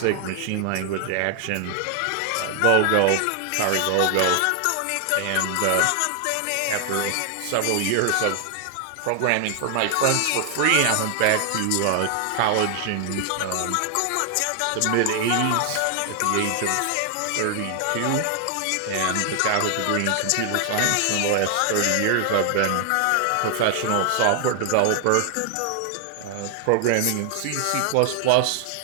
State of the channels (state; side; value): different; both; correlation 0.00